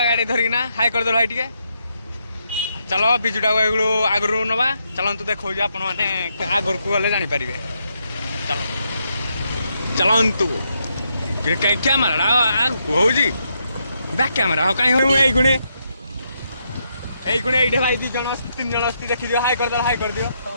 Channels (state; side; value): inverted; both; correlation -0.79